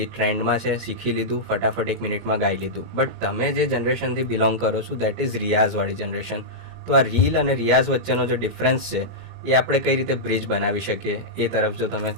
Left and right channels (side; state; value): right; late; 2.1 ms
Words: ટ્રેન્ડમાં છે, શીખી લીધું, ફટાફટ 1 મિનિટમાં ગાઈ લીધું. બટ તમે જે જનરેશનથી બિલોંગ કરો છો દેટ ઇઝ રિયાઝવાળી જનરેશન. તો આ રીલ અને રિયાઝ વચ્ચેનો જે ડિફરન્સ છે એ આપણે કઈ રીતે બ્રિજ બનાવી શકીએ એ તરફ જો તમે